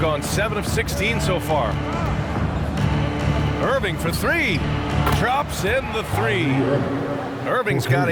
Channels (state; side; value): identical; both; correlation 1.00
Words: gone 7 of 16 so far. Irving for 3. Drops in the 3. Irving's got